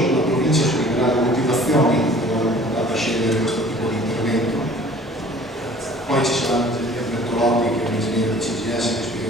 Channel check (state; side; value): normal; both; correlation 0.49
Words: la provincia spiegherà le motivazioni per aver andato a scegliere questo tipo di intervento. Poi ci sarà l'ingegner Bertolotti, che è un ingegnere del CGS, che